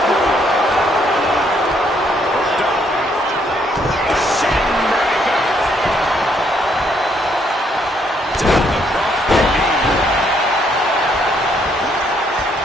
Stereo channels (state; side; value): normal; both; correlation 0.71